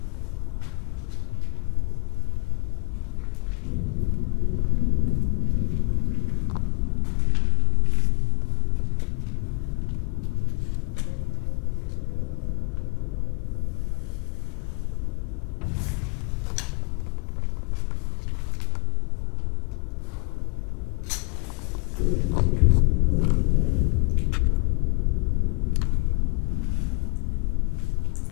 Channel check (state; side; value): quieter; right; 32.7 dB